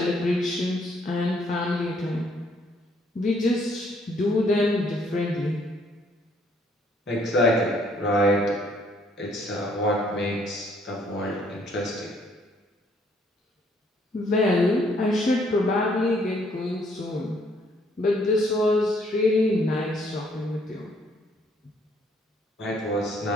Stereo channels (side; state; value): both; normal; correlation 0.66